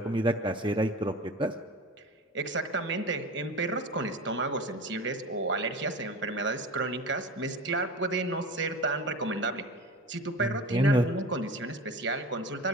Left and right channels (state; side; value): normal; both; correlation 0.33